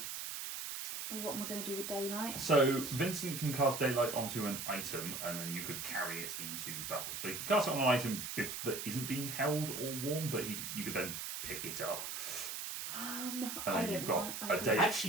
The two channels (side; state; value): right; noise; hiss, 5 dB below the sound